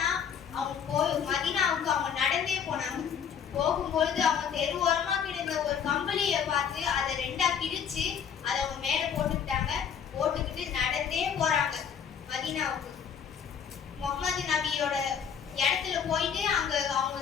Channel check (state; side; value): quieter; right; 7.6 dB